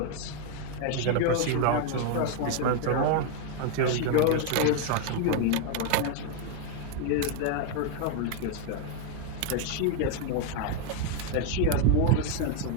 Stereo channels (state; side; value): different; both; correlation 0.00